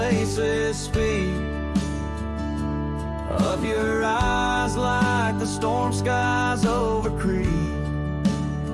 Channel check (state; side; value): identical; both; correlation 1.00